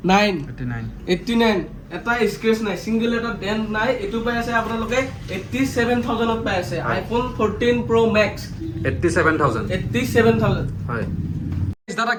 এটা স্ক্ৰেচ নাই সিঙ্গেল এটা ডেন্ট নাই এটো পাই আছে আপোনালোকে 87000ত পাই আছে আইফোন 14 প্ৰ মেক্স 87000 হয় দাদা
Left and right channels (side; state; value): both; identical; correlation 1.00